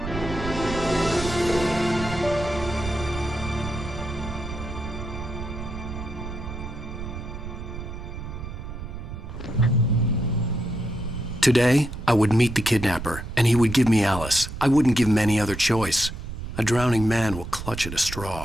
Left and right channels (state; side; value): noise; right; rumble, 8 dB below the sound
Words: Today, I would meet the Kidnapper, and he would give me Alice. I wouldn't give him any other choice. A drowning man will clutch at a